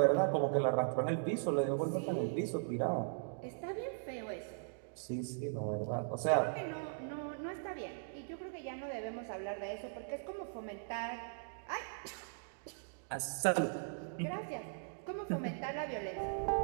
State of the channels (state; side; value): silent; left; digital silence